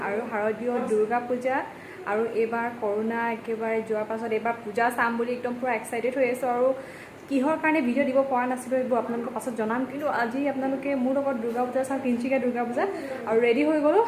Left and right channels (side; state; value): both; identical; correlation 1.00